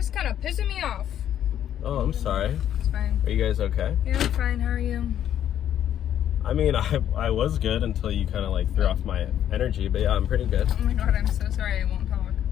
kind of pissing me off. Oh, I'm sorry. It's fine. Are you guys okay? Yeah, I'm fine. How are you? I mean, I was good until you kind of like threw off my energy, but yeah, I'm pretty good. Oh my god, I'm so sorry. I won't talk.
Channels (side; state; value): right; quieter; 10.5 dB